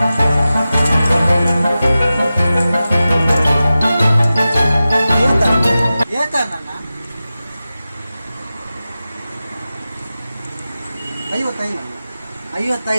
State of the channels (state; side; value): inverted; both; correlation -0.94